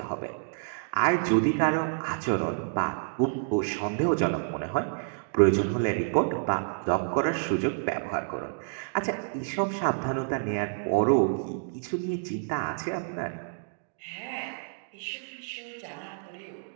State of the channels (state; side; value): silent; left; digital silence